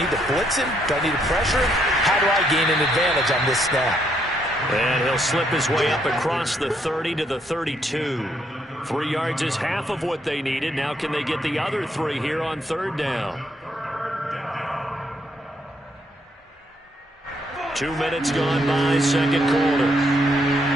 to blitz him? Do I need to pressure him? How do I gain an advantage on this snap? And he'll slip his way up across the 30 to the 32. 3 yards is half of what they needed. Now can they get the other 3 here on 3rd down? 2 minutes gone by, 2nd quarter.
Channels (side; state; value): both; normal; correlation 0.73